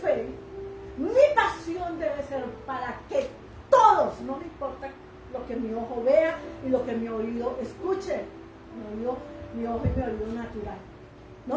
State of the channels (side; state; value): both; identical; correlation 1.00